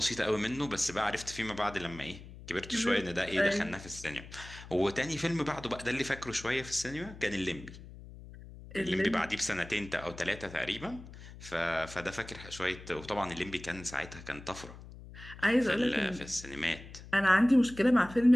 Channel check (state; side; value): noise; left; hum, 16 dB below the sound